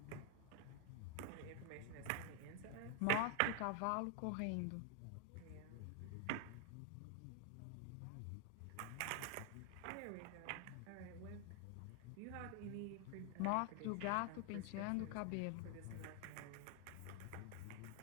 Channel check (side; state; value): both; different; correlation 0.00